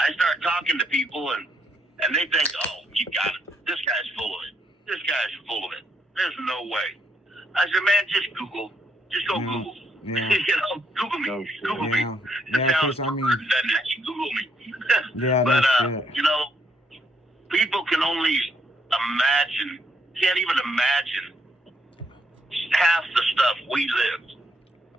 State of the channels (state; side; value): normal; both; correlation 0.73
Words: talking to people and they think, oh, you got it. This guy's full of it. This guy's full of it. There's no way. I said, man, just Google. Just go Google. Yeah. Google me. No, Google me. Yeah, it sounds weird than that. You Google me. Yeah, but, shit. people can only can't even imagine half the stuff we lived.